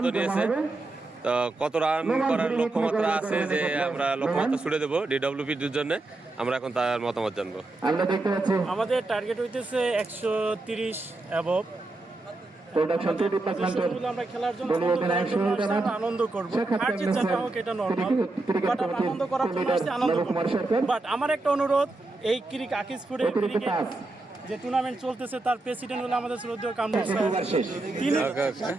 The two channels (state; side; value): quieter; left; 3.1 dB